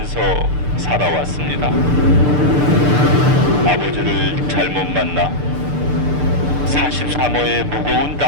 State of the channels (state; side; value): late; left; 6.8 ms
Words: 살아왔습니다. 아버지를 잘못 만나 43호의 무거운